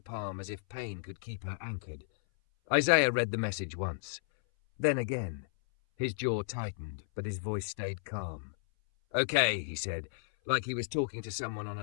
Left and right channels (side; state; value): right; silent; 55 dB below the other